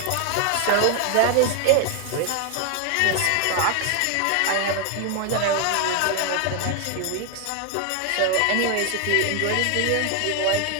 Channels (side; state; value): both; different; correlation 0.01